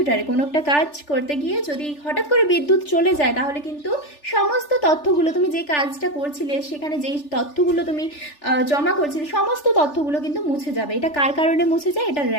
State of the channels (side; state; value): right; late; 3.4 ms